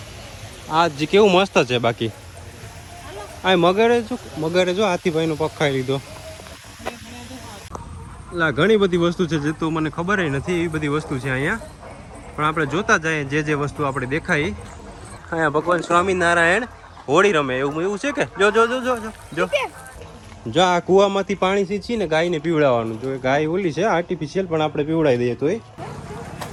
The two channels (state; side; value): identical; both; correlation 1.00